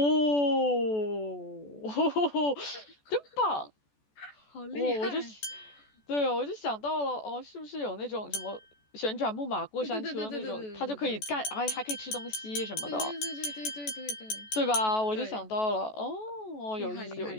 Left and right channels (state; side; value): late; right; 14 ms